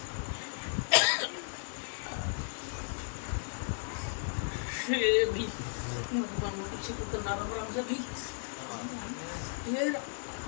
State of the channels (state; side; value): silent; right; 55 dB below the other